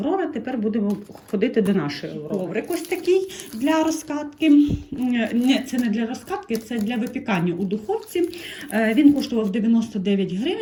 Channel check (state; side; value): identical; both; correlation 1.00